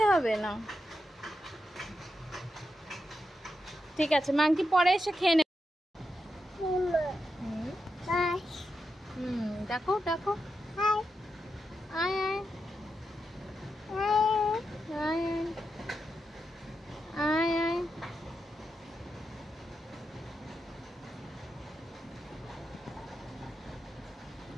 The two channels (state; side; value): normal; both; correlation 0.87